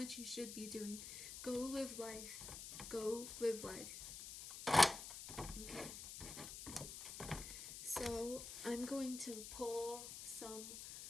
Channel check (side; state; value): left; noise; hiss, 9 dB below the sound